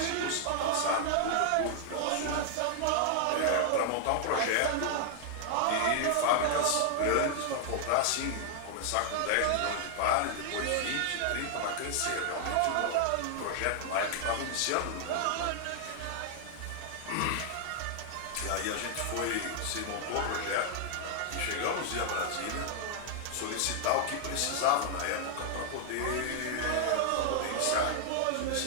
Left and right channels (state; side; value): different; both; correlation 0.00